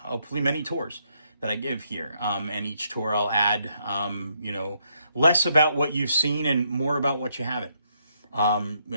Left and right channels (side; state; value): both; inverted; correlation -0.74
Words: many tours that I give here. And each tour I'll add, less about what you've seen and more about what you haven't.